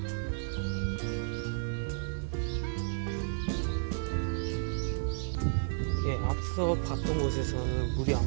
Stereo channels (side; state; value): left; silent; 56 dB below the other